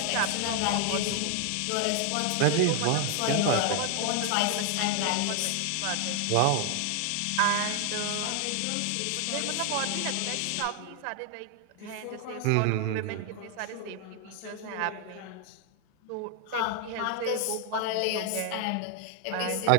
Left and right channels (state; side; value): different; both; correlation 0.00